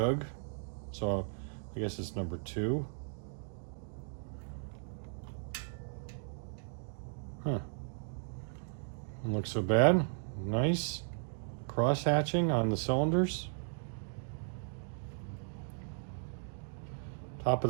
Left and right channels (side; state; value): left; silent; digital silence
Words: So I guess it's number 2. Huh. Doesn't look so bad. Nice cross hatching on the cylinders. Top of